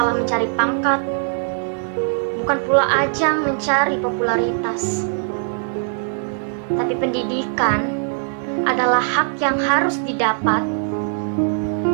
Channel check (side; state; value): left; silent; 63 dB below the other